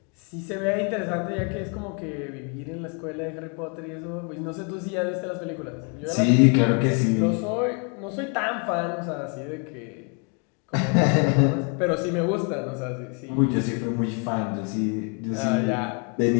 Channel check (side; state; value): right; quieter; 37.1 dB